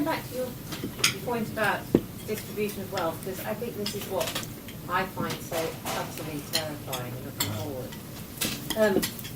back to your point about distribution of wealth, because I think this is what I find so utterly terrifying looking forward.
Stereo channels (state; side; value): identical; both; correlation 1.00